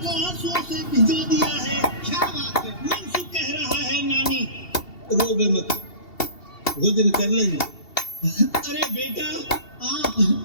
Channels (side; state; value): right; late; 2.7 ms